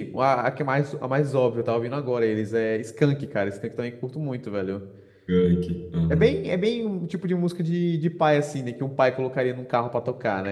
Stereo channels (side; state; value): both; identical; correlation 1.00